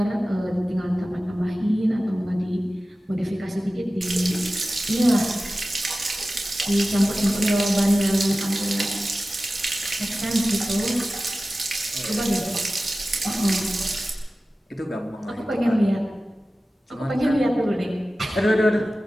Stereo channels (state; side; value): normal; both; correlation 0.96